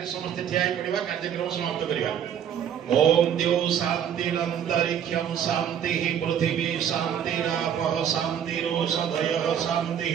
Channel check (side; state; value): left; quieter; 9.0 dB